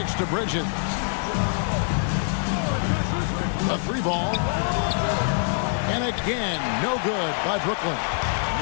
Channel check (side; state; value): right; silent; digital silence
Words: to Bridges. A 3-ball. And again, no good by Brooklyn.